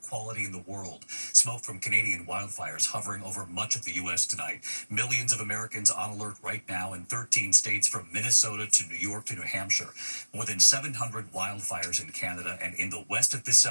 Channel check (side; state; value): both; inverted; correlation -1.00